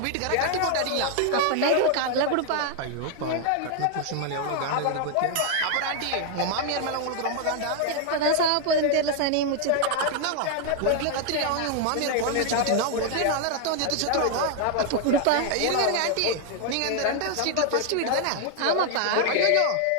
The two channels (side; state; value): both; different; correlation 0.00